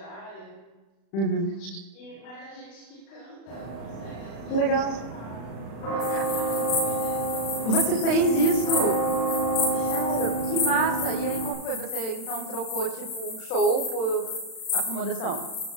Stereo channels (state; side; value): late; right; 36 ms